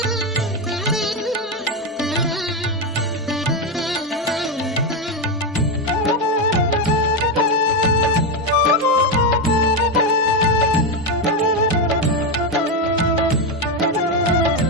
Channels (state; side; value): normal; both; correlation 0.09